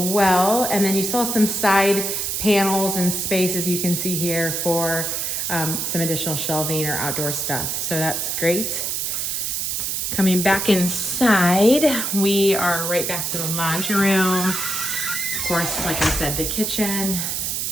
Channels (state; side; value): noise; right; hiss, 1 dB below the sound